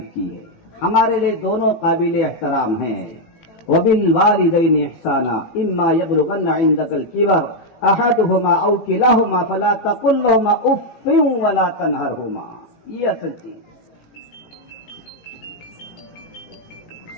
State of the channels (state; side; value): late; right; 18 ms